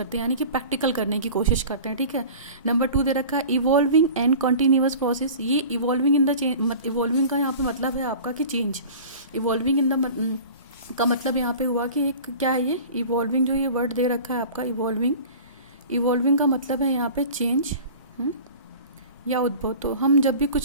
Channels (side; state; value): both; inverted; correlation -0.40